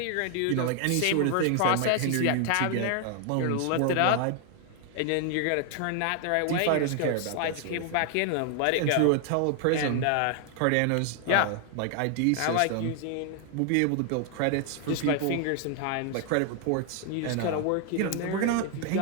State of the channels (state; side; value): different; both; correlation 0.00